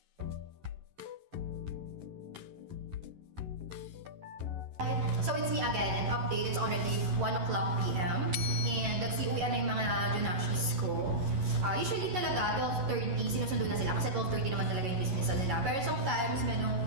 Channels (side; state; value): left; late; 11 ms